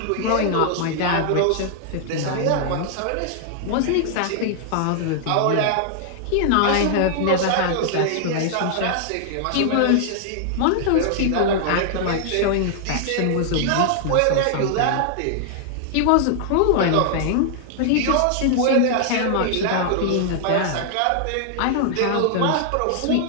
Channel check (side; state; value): both; different; correlation -0.01